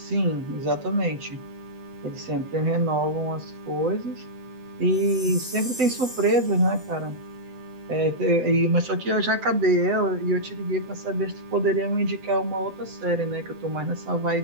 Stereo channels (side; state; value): left; late; 7.9 ms